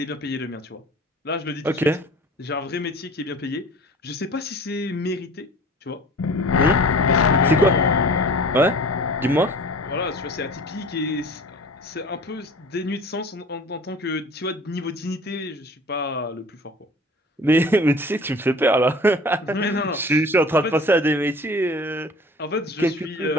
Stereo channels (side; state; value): both; normal; correlation 0.43